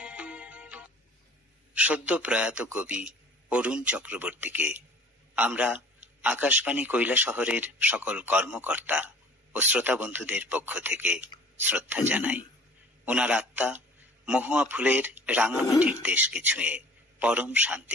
সদ্য প্রয়াত কবি অরুণ চক্রবর্তীকে আমরা আকাশবাণী কৈলাসহরের সকল কর্মকর্তা ও শ্রোতা বন্ধুদের পক্ষ থেকে শ্রদ্ধা জানাই। ওনার আত্মা মহুয়া ফুলের রাঙামাটির দেশকে ছুঁয়ে পরম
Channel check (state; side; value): normal; both; correlation 0.48